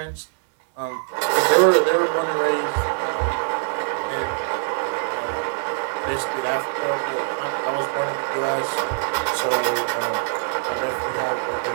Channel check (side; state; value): left; silent; 60 dB below the other